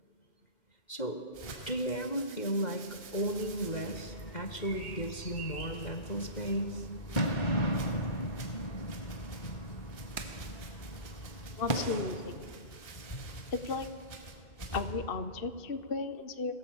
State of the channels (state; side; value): late; right; 2.1 ms